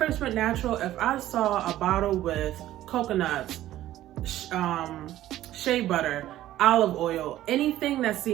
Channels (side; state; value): left; quieter; 13.9 dB